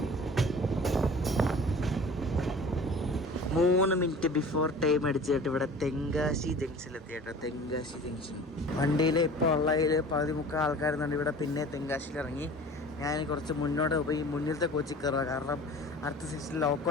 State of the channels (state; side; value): normal; both; correlation 0.43